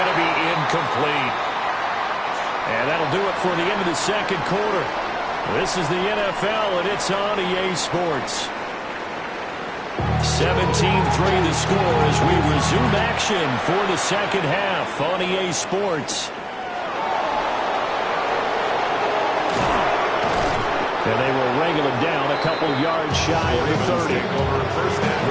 to be incomplete. And that'll do it for the end of the second quarter. This is the NFL, and it's on EA Sports. 17-3 the score as we resume action for the second half on EA Sports. And they will wrangle him down a couple yards shy of the 30.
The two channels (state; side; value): identical; both; correlation 1.00